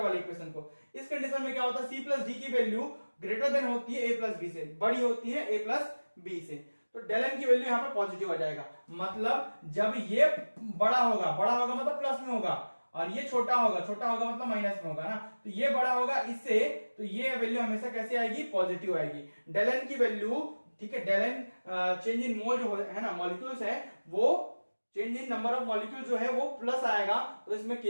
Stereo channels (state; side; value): inverted; both; correlation -1.00